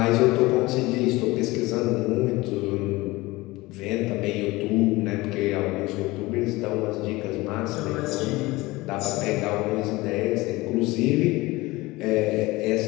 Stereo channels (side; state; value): right; quieter; 20.8 dB